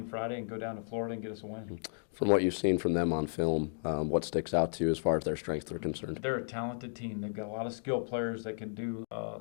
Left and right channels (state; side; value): silent; right; digital silence